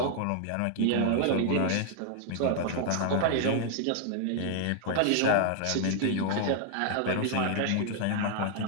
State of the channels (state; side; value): different; both; correlation -0.01